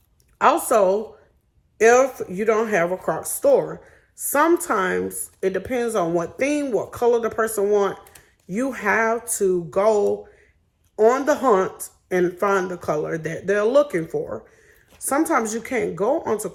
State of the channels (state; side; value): identical; both; correlation 1.00